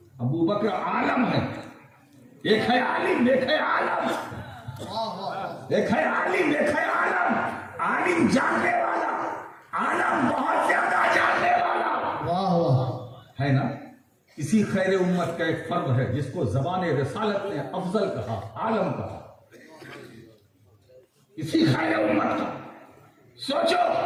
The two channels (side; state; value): both; identical; correlation 1.00